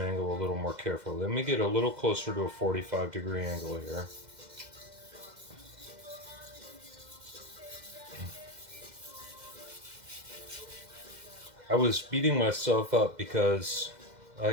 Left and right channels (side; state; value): left; late; 2.1 ms